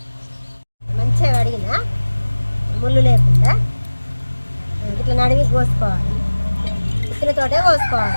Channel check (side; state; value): both; inverted; correlation -1.00